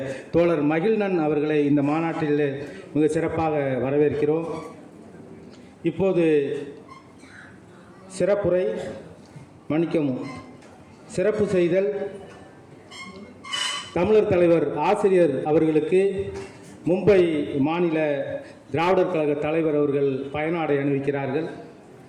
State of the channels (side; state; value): both; identical; correlation 1.00